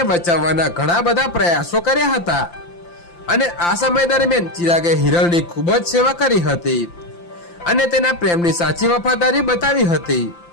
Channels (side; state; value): right; late; 5.8 ms